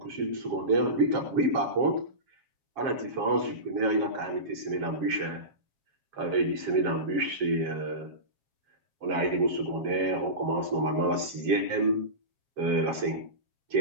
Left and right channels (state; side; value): late; left; 7.4 ms